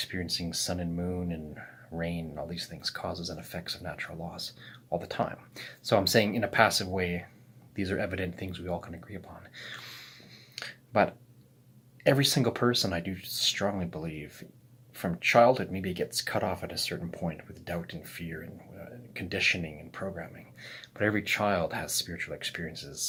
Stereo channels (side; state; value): both; identical; correlation 1.00